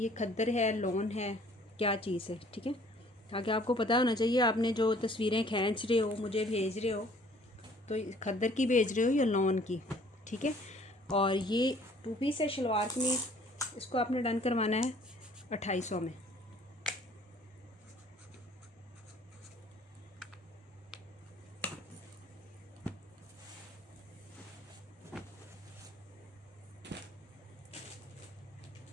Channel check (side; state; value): both; normal; correlation 0.56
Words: खद्दर है, लॉन है, क्या चीज़ है, ठीक है। ताकि आपको पता होना चाहिए, आपने जो तस्वीरें खींच रहे हो, मुझे भेज रहे हो, तो खद्दर की भेज रहे हो या लॉन की, ठीक है। और ये 2 पीस है शलवार कमीज़, इसको आपने डन करवाना है 2800 में।